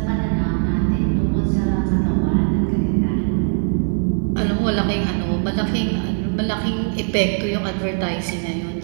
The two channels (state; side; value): silent; left; 56 dB below the other